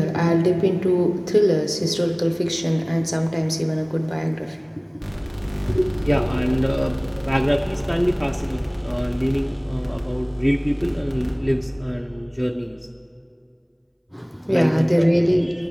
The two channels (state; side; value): identical; both; correlation 1.00